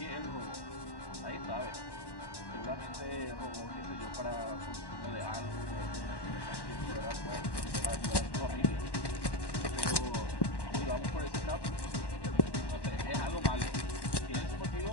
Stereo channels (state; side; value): late; right; 1.1 ms